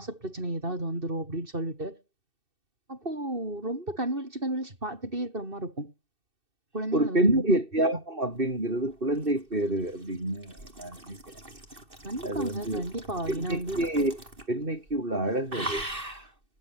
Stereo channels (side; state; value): left; late; 2.6 ms